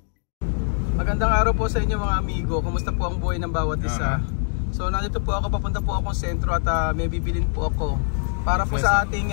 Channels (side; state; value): right; silent; 63 dB below the other